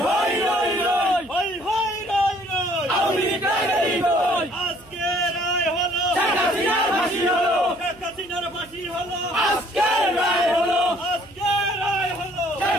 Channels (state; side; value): noise; right; hum, 26 dB below the sound